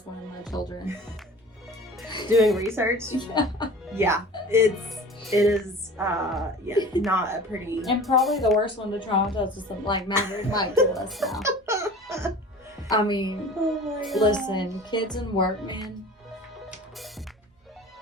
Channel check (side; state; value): both; normal; correlation 0.41